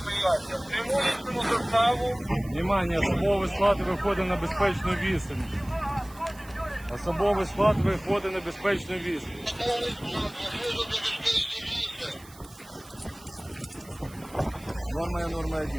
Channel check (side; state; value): right; noise; hiss, 22 dB below the sound